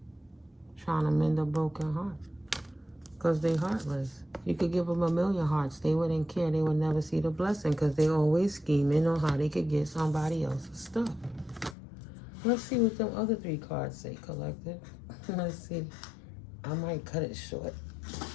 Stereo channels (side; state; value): right; drops out; at 11.8 s